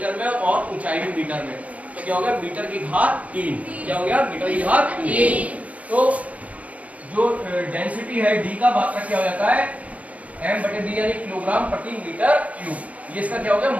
में और ऊंचाई भी मीटर में। तो क्या हो गया? मीटर की घात 3। क्या हो गया? मीटर की घात 3। तो जो डेंसिटी है डी का मात्रा क्या हो जाता है? m बटे b यानी किलोग्राम प्रति मीटर क्यूब। ये इसका क्या हो गया?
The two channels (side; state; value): left; late; 0.068 ms